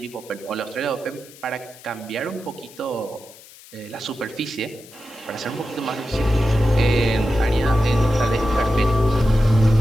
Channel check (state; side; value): noise; left; hiss, 21 dB below the sound